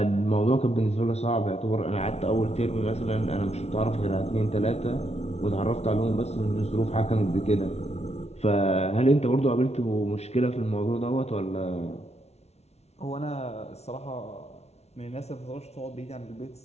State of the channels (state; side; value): late; right; 0.31 ms